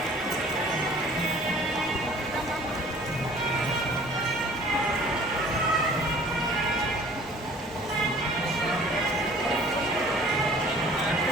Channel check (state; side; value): normal; both; correlation 0.51